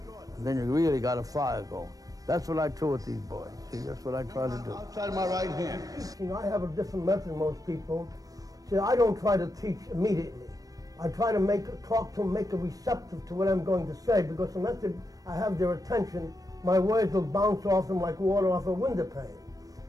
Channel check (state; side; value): late; left; 0.18 ms